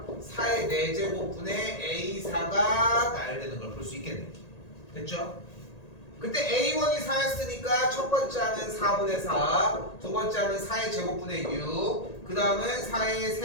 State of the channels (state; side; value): late; right; 1.8 ms